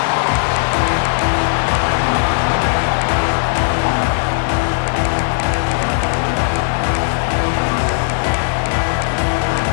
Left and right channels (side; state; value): right; silent; 56 dB below the other